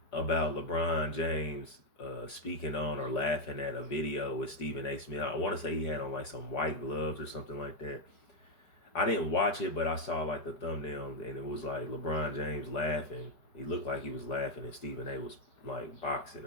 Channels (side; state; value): right; late; 4.8 ms